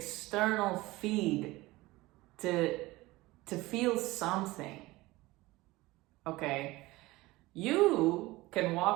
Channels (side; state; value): left; quieter; 20.0 dB